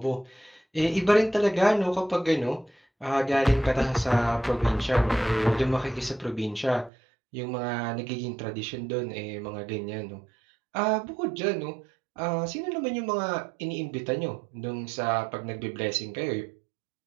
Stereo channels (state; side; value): drops out; left; at 6.9 s